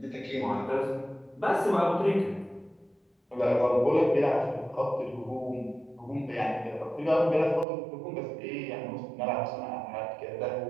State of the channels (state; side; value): drops out; left; at 7.7 s